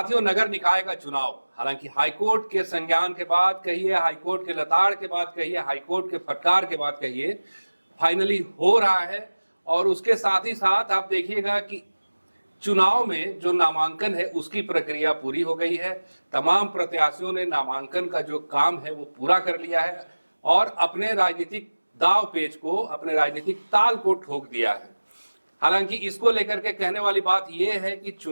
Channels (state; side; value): inverted; both; correlation -1.00